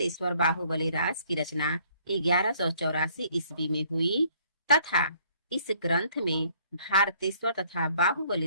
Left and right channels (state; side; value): inverted; both; correlation -0.62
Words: बाहुबली रास की रचना 1184 ईस्वी में हुई तथा इस ग्रंथ में भारतेश्वर तथा